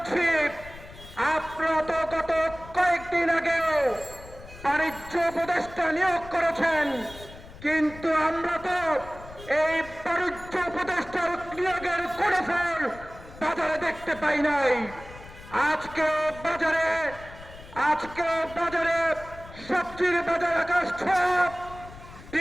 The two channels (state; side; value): noise; left; rumble, 17 dB below the sound